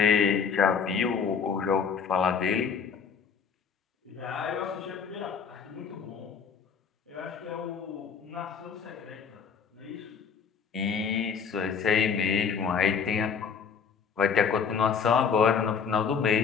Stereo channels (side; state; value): right; quieter; 6.4 dB